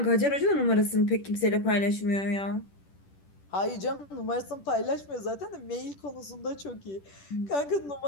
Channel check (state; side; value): late; right; 10 ms